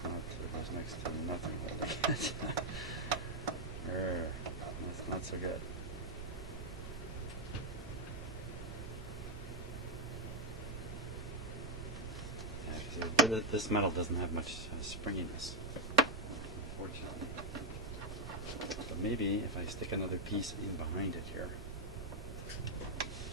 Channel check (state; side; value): noise; right; rumble, 8 dB below the sound